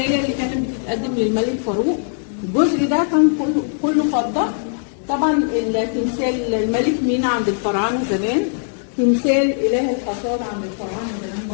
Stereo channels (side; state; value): right; silent; 61 dB below the other